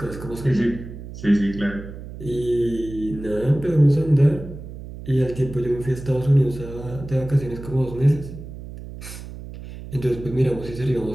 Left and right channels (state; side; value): noise; right; hum, 12 dB below the sound